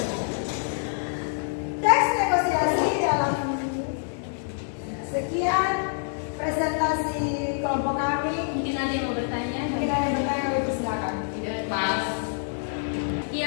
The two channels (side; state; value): right; silent; digital silence